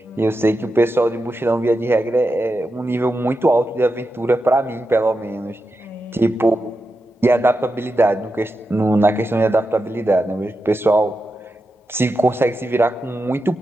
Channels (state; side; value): normal; both; correlation 0.89